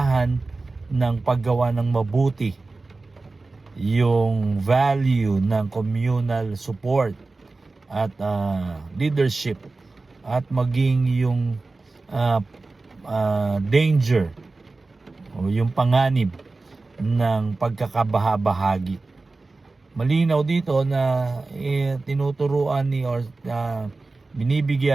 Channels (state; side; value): quieter; left; 3.5 dB